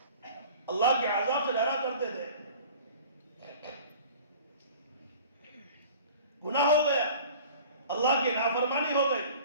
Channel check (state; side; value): inverted; both; correlation -0.44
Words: اللہ کے عذاب سے ڈرا کرتے تھے. گناہ ہو گیا، اللہ کی نافرمانی ہو گئی،